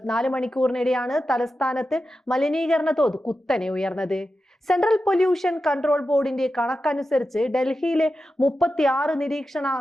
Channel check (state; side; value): normal; both; correlation 0.91